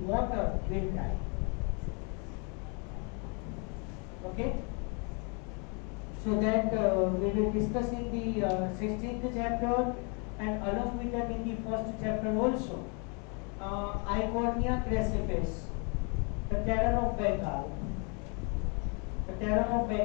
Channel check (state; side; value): quieter; right; 35.0 dB